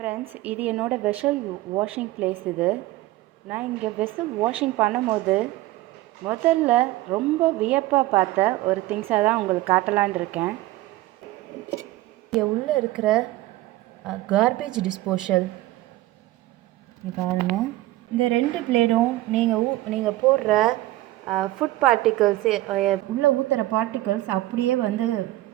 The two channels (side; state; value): left; quieter; 17.1 dB